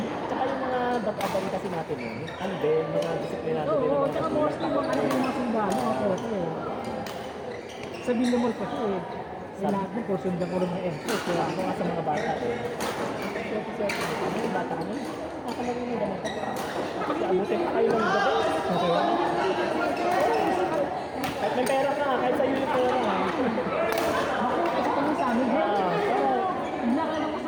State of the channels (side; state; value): both; identical; correlation 1.00